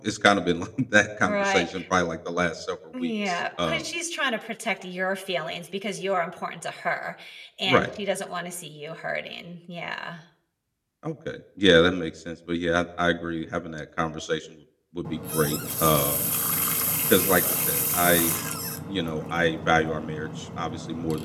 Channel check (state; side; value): identical; both; correlation 1.00